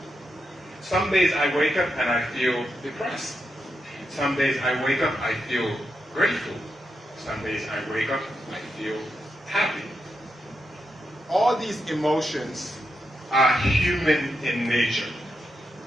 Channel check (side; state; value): both; normal; correlation 0.85